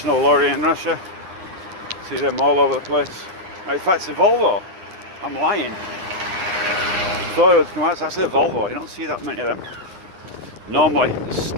lorry in Russia. See them all over the place. In fact, it's a Volvo. I'm lying. I thought it was KAMAZ. It's actually a Volvo. You don't see that many of them. Normally,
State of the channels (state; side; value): late; left; 10 ms